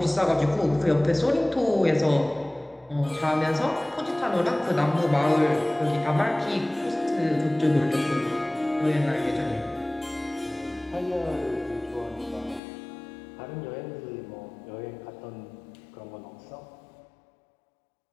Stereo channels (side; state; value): right; drops out; at 12.6 s